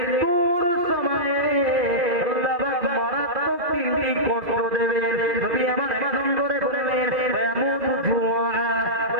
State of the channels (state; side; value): late; left; 2.0 ms